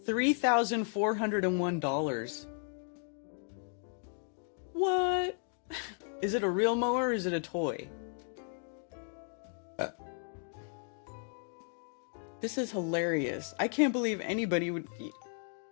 $3,401. What? Is it a real mower or is it a toy? This is hilarious. I can't believe anybody would...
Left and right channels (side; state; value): right; silent; 55 dB below the other